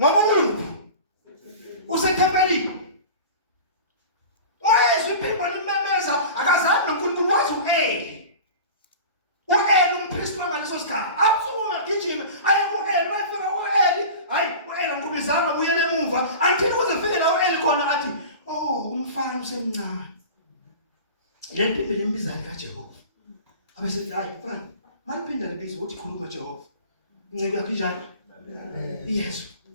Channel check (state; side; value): inverted; both; correlation -0.35